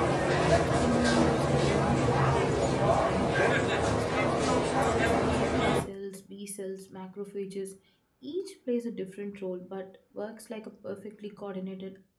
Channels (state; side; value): identical; both; correlation 1.00